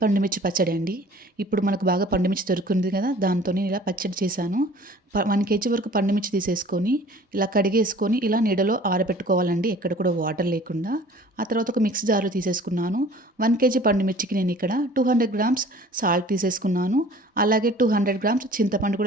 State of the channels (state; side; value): normal; both; correlation 0.49